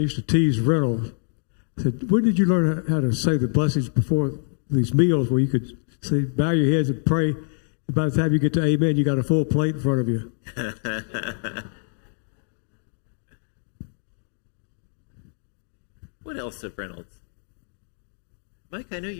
to tease Reynolds. I said, "When did you learn how to say the blessings before these meals where you could say, bow your heads and pray, and by the time you get to amen, you got a full plate in front of you?" What else of Reynolds? Mike, I know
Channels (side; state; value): right; silent; digital silence